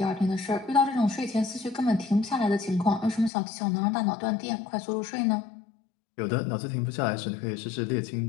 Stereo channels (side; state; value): right; drops out; at 3.3 s